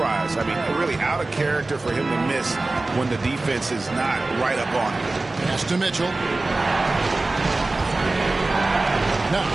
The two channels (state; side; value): quieter; left; 3.2 dB